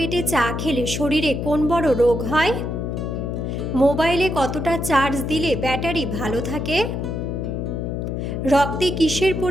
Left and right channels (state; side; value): noise; left; hum, 3 dB below the sound